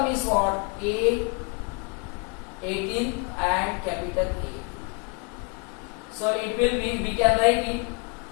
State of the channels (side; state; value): right; quieter; 34.1 dB